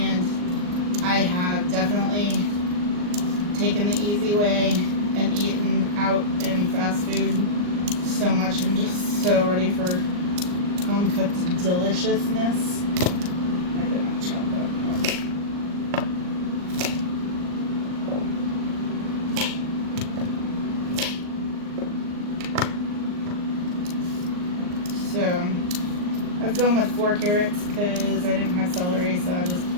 I have definitely taken the easy way and eaten out in fast food so much. I'm just so ready for home cooked deliciousness. I did not chop that up. So I've gone with 4 carrots because I didn't have celery, so I just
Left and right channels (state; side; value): late; left; 39 ms